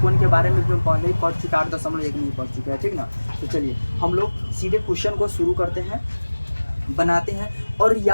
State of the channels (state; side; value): inverted; both; correlation -1.00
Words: के बारे में भी हम पहले ही पढ़ चुके, 8.1 में ही पढ़ चुके हैं, ठीक ना। तो चलिए हम लोग सीधे क्वेश्चन को शुरू करते हैं, बनाते हैं। और